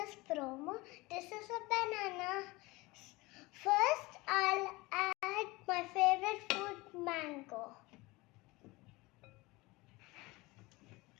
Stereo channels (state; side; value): quieter; right; 22.5 dB